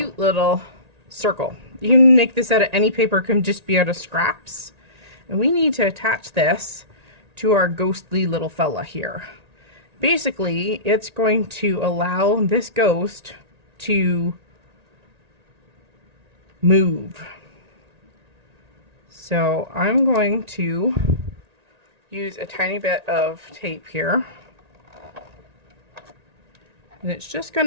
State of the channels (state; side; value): late; left; 1.9 ms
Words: little circle. You can make this out of any paper, it can just be out of scraps. And we need to attach this to our ghostly little fella here. Basically, it's going to allow this ghost to move. So I'm going to use a tiny bit of tape here. And it's just going